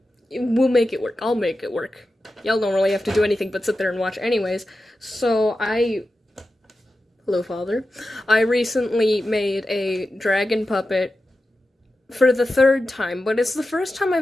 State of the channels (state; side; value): normal; both; correlation 0.92